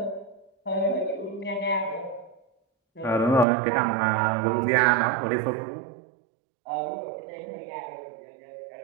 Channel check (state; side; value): drops out; left; at 3.5 s